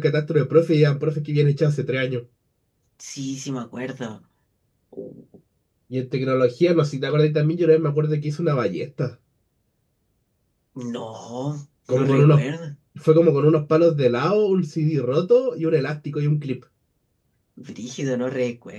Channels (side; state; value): both; identical; correlation 1.00